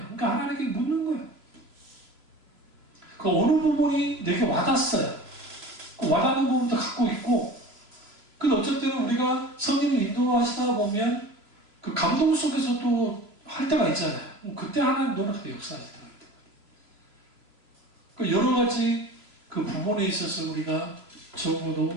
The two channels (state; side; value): late; left; 3.0 ms